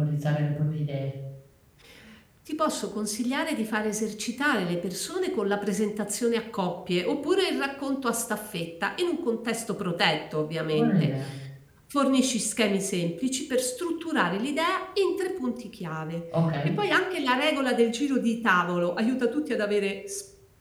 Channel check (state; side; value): identical; both; correlation 1.00